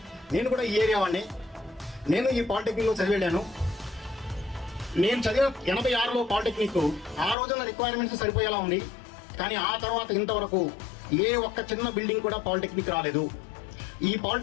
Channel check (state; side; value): drops out; right; at 7.4 s